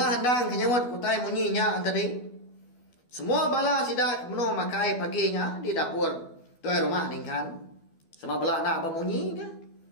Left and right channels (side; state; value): right; late; 12 ms